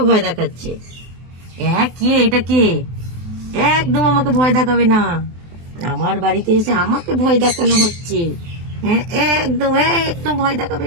ভয় দেখাচ্ছে? হ্যাঁ কে? এটা কে? একদম আমাকে ভয় দেখাবে না, আমার বাড়িতে এসে আমাকে ভয় দেখানো হচ্ছে। হ্যাঁ একদম, একদম ভয় দেখাবে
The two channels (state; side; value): late; left; 23 ms